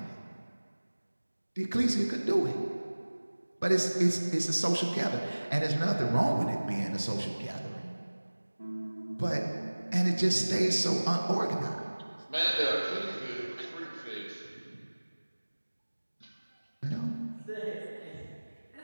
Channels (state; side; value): inverted; both; correlation -1.00